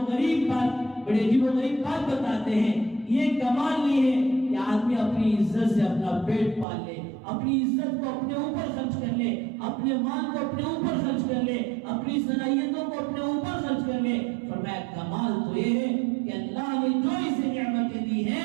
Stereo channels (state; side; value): drops out; left; at 6.7 s